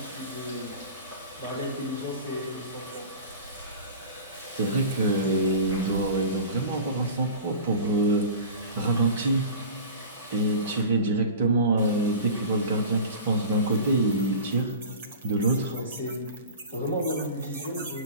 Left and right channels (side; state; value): both; inverted; correlation -0.36